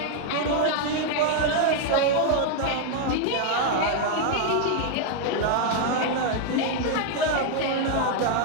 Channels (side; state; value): both; different; correlation 0.00